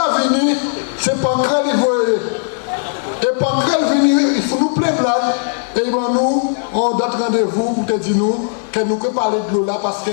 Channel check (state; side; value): silent; right; 59 dB below the other